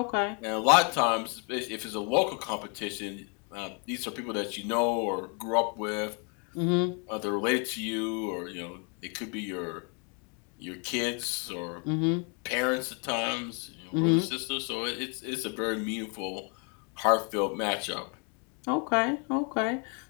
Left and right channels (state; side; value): quieter; right; 36.7 dB